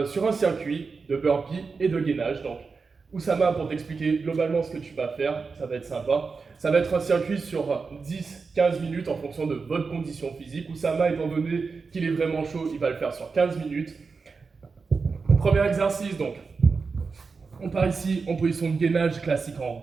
sur un circuit de burpee et de gainage. Donc Oussama, pour t'expliquer globalement ce que tu vas faire, ça va être sympa. Ça va être un circuit sur 10-15 minutes en fonction de votre condition physique. Oussama, étant donné qu'il est vraiment chaud, il va le faire sur 15 minutes. Premier exercice donc. On part ici en position de gainage classique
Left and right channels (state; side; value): quieter; left; 4.7 dB